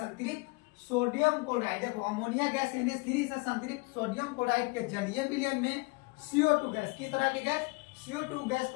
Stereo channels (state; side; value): quieter; right; 27.0 dB